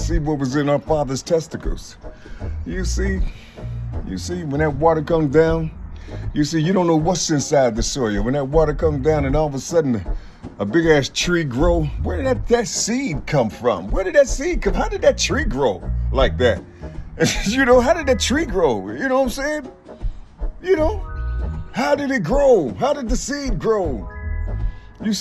what was in our father's testicles. You see? You see, when that water comes down, you see, you don't know what's inside the soil. When that water comes down and all of a sudden a big ass tree grow, where did that seed come from? Where did that seed come? How did that tree grow like that? You know, how did that tree grow? You know what I'm saying? You know, how did it grow? How did the seed grow? You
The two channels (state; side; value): identical; both; correlation 1.00